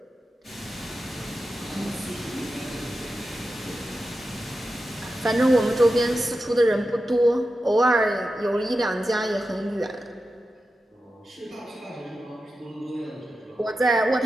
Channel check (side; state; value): both; normal; correlation 0.91